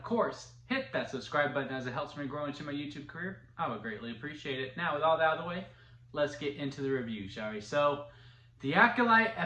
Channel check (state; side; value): identical; both; correlation 1.00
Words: course, hit that subscribe button as it helps me grow into my YouTube career. I would greatly appreciate it. Now, with all that out of the way, let's get into the review, shall we? So, The Acolyte,